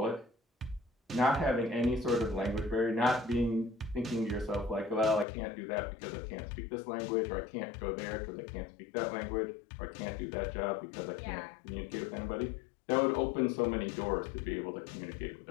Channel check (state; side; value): drops out; right; at 5.2 s